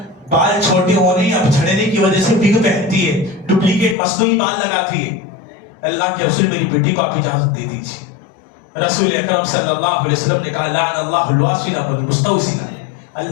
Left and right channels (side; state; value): right; drops out; at 4.0 s